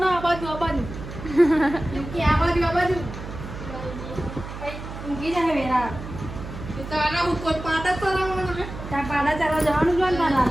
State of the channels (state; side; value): noise; right; hum, 10 dB below the sound